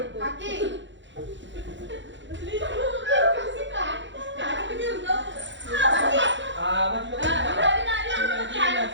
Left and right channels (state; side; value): late; left; 0.54 ms